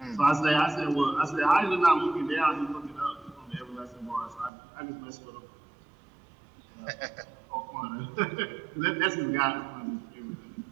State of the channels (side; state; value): left; drops out; at 4.5 s